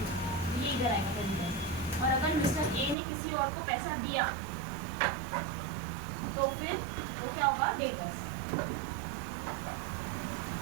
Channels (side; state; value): left; drops out; at 3.0 s